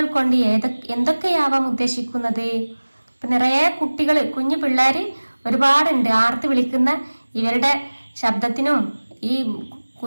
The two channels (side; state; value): both; inverted; correlation -1.00